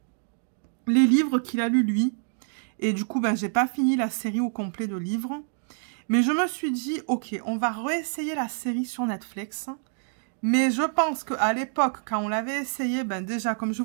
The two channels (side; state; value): left; silent; 60 dB below the other